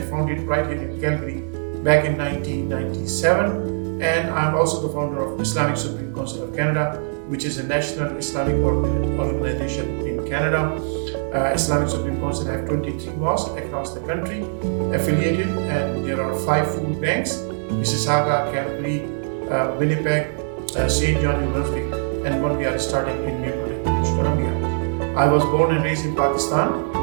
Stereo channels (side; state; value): left; silent; digital silence